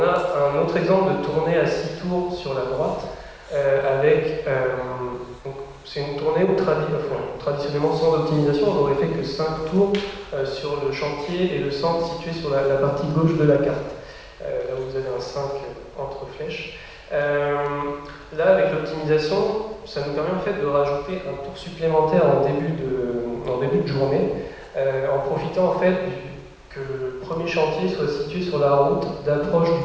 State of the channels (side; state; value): both; identical; correlation 1.00